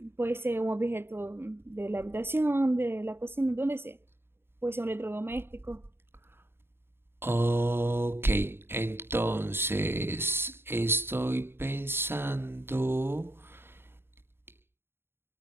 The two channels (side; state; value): left; late; 0.11 ms